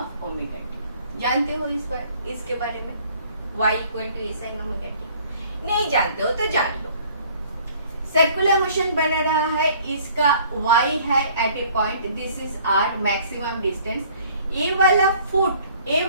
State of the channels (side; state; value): both; inverted; correlation -0.56